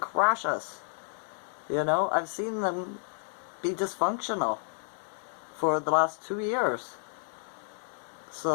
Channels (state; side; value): silent; right; 57 dB below the other